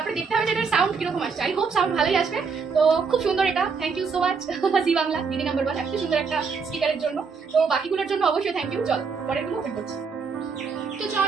দেখতে হবে যে এটার সাউন্ড কিরকম আসছে। আই হোপ সাউন্ড ভালোই আসবে। তো খুব সুন্দর এটা, থ্যাংক ইউ সো মাচ জি বাংলা দিদি নাম্বার 1 এত সুন্দর একটা স্পিকারের জন্য। তো বাকিগুলোর জন্য অবশ্যই থ্যাংক ইউ। চলো পরেরগুলো ওপেন করছি। তো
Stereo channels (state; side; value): quieter; left; 5.3 dB